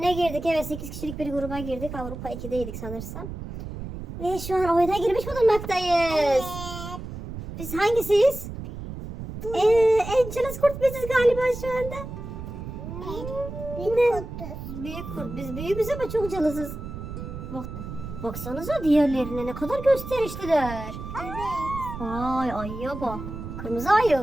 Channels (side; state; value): right; noise; rumble, 9 dB below the sound